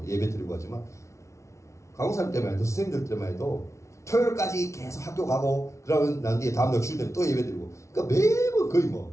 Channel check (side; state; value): right; late; 0.14 ms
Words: 예배 드리고 하지만 강사님 때만 해도 선생님들 때만 해도 토요일까지 계속 학교 가고 그러면 난 뒤에 다음날 주일 되면 또 예배 드리고, 그러니까 매번 거의